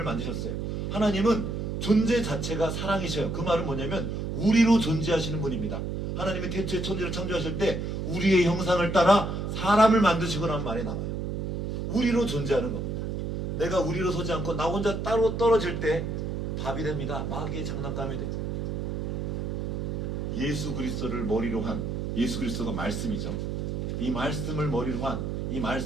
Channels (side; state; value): right; noise; hum, 2 dB below the sound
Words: 만드셨어요. 하나님은 존재 자체가 사랑이셔요. 그 말은 뭐냐면 우리로 존재하시는 분입니다. 하나님이 태초에 천지를 창조하실 때 우리의 형상을 따라 사람을 만드시고라는 말이 나와요. 우리로 존재하는 겁니다. 내가 우리로 서지 않고 나 혼자 따로 떨어질 때 밥이 됩니다. 마귀의 장난감이 돼요. 예수 그리스도를 머리로 한, 예수 그리스도가 말씀이죠. 이 말씀을 머리로 한, 이